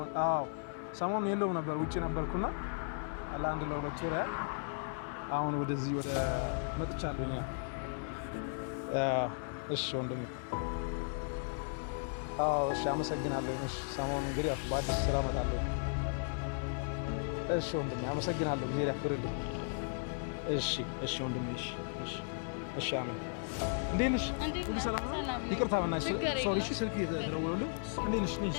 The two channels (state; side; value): silent; right; digital silence